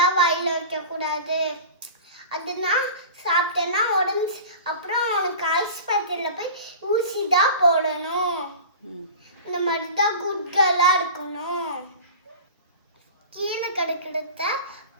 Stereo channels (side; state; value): both; inverted; correlation -0.36